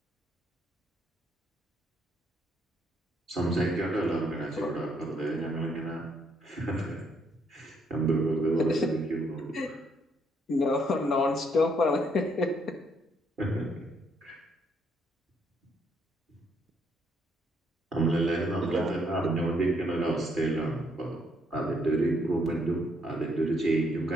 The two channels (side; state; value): both; normal; correlation 0.71